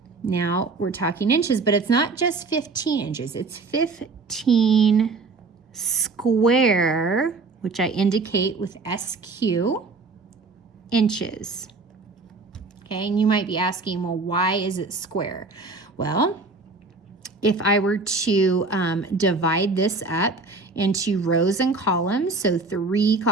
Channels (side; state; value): left; quieter; 3.9 dB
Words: Now we're talking inches, but it's not just 15 inches, it's 15 square, which I indicate with SQ, inches. Okay, and you might be asking, well, why is it square? Well, if I were to divide this up into rows and columns, so 3